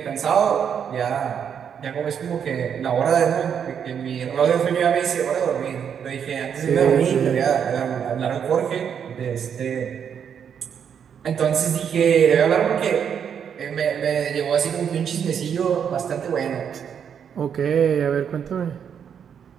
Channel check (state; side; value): quieter; left; 7.8 dB